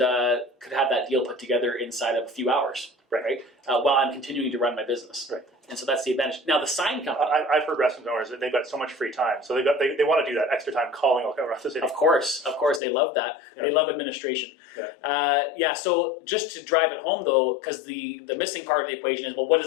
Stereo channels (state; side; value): drops out; right; at 12.8 s